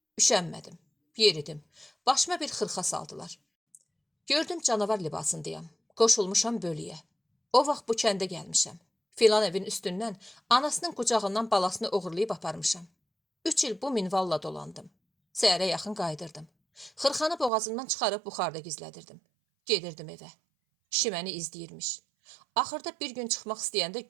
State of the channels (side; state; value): left; drops out; at 17.5 s